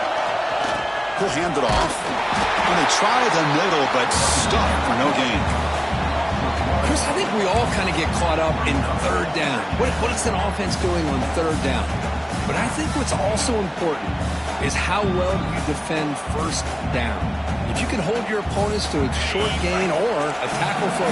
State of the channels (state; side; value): identical; both; correlation 1.00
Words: He'll hand it off. And they try the middle, but stuck for no gain. Chris, I think we all kind of get caught up in 3rd down. What is an offense doing on 3rd down? But I think what's also important is how well you defend 1st down. If you can hold your opponents to a short gain or a tackle for